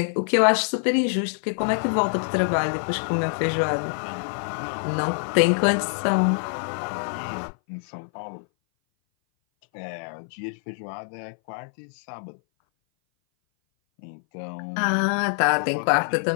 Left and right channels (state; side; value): silent; right; 59 dB below the other